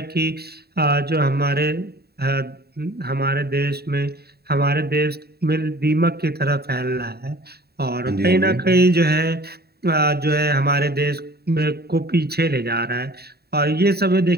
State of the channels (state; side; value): late; left; 0.46 ms